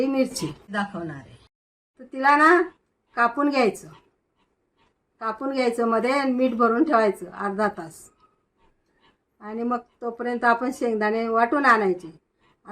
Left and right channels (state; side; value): identical; both; correlation 1.00